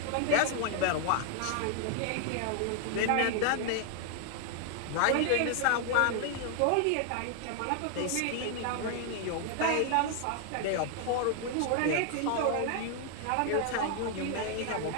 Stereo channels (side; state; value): both; different; correlation 0.00